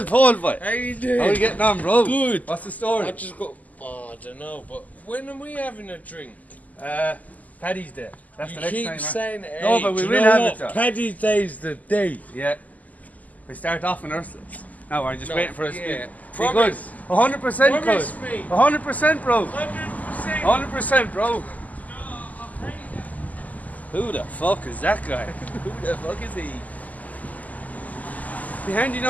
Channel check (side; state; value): right; late; 0.077 ms